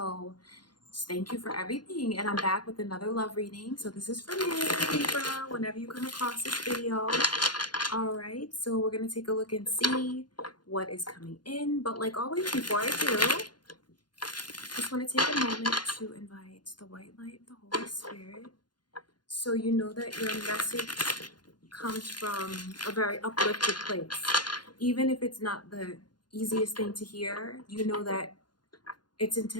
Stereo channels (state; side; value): late; right; 0.71 ms